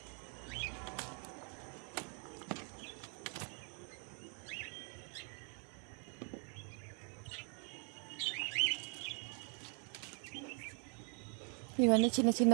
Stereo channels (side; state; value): left; quieter; 40.0 dB